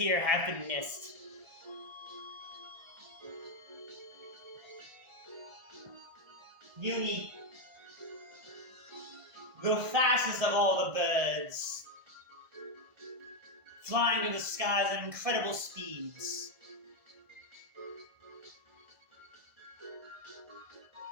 have been missed. Eunie, the fastest of all the birds, flying in the skies at incredible speeds.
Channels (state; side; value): late; left; 1.5 ms